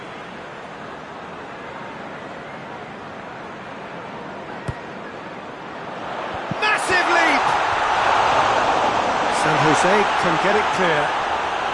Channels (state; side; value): identical; both; correlation 1.00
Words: Massive leap! San Jose can get it clear.